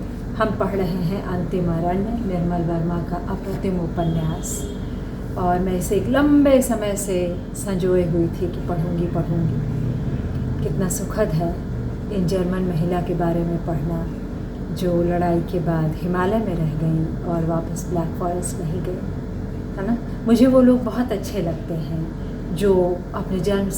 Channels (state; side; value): identical; both; correlation 1.00